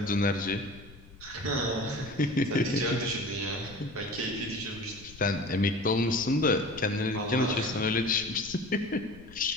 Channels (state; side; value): noise; left; rumble, 20 dB below the sound